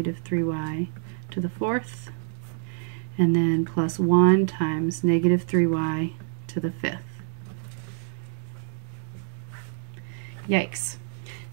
3y to the 4th, and then plus 1 times negative 3y to the 5th. Yikes.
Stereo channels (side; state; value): left; silent; digital silence